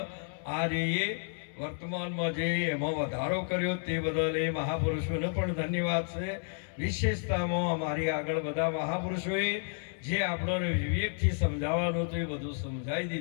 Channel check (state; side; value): silent; right; 57 dB below the other